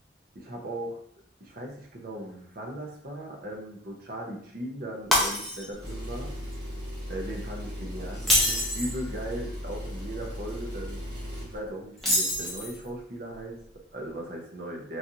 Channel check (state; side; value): normal; both; correlation 0.35